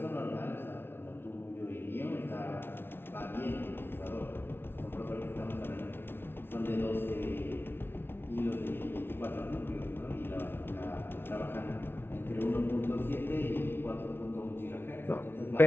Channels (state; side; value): late; right; 0.11 ms